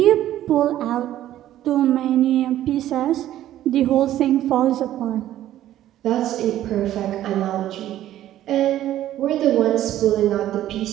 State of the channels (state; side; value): quieter; left; 12.9 dB